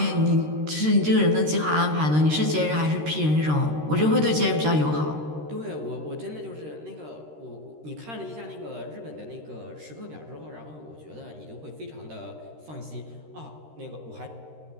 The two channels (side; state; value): left; late; 13 ms